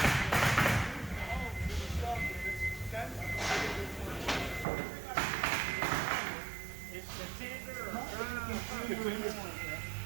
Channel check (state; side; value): drops out; left; at 4.7 s